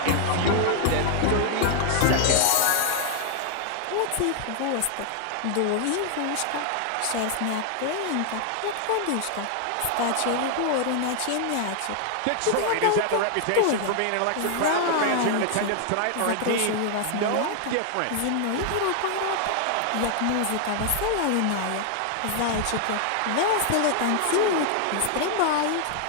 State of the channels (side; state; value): both; different; correlation 0.00